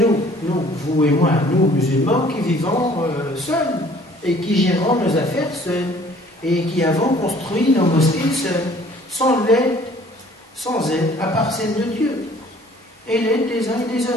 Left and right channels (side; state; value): both; normal; correlation 0.54